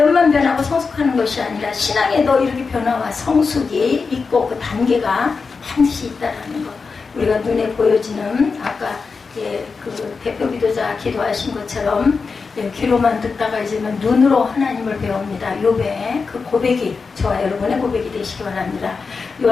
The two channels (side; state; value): right; quieter; 4.8 dB